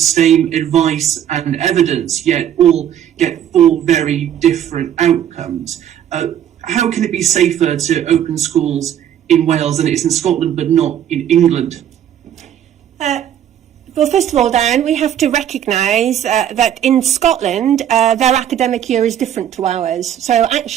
advice and evidence, yet all get 4 very different outcomes. How can it be safer to open schools in Wales than it is in Scotland but not in England? Well, first of all, Dan, we have to recognise that in Scotland, their academic year is different to ours. So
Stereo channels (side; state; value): left; quieter; 10.2 dB